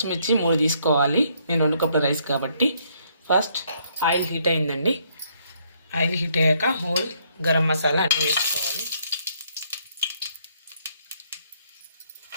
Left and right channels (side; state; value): both; inverted; correlation -0.69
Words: 3 తీసుకోవాలి. నేను 2 కప్పుల రైస్ కాబట్టి. ఫస్ట్ ఆయిల్ హీట్ అయిందండి. ఆయిల్ హీట్ అయ్యాక హోల్ గరం మసాలా అన్నీ వేసుకోవాలి.